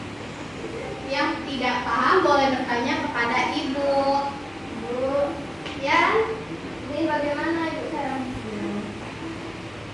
Yang tidak paham boleh bertanya kepada Ibu. Bu, Ya, ini bagaimana Ibu cara?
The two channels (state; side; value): noise; left; hum, 26 dB below the sound